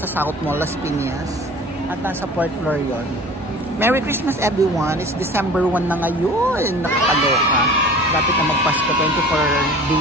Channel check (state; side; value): normal; both; correlation 0.42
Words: South Mall, Las Piñas. At nasa 4th floor yun. Merry Christmas everyone. It's December 1 na ngayon. Nakakaloka. Dapat na magpasko. 24